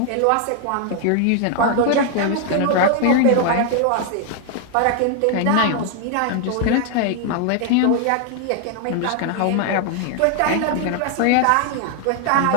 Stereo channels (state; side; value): different; both; correlation 0.00